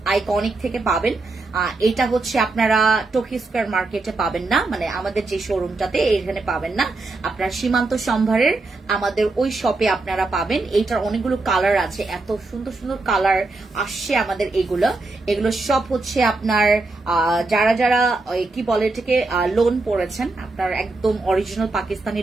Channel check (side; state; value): left; quieter; 3.3 dB